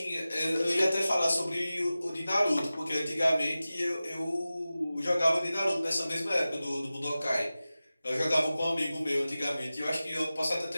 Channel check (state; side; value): inverted; both; correlation -0.96